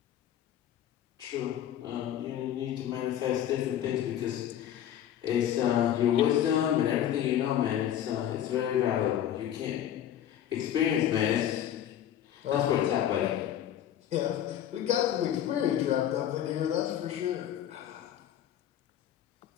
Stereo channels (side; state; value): right; quieter; 10.8 dB